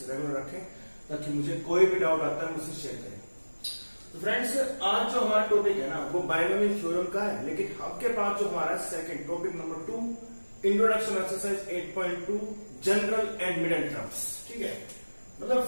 रेगुलर रखें ताकि मुझे कोई भी डाउट आता है मुझसे शेयर करें। तो फ्रेंड्स, आज जो हमारा टॉपिक है ना वो बायनोमियल थ्योरम का है, लेकिन आपके पास जो हमारा second topic number 2 introduction exercise 8.2 general and middle terms, ठीक है। मतलब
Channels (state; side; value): inverted; both; correlation -1.00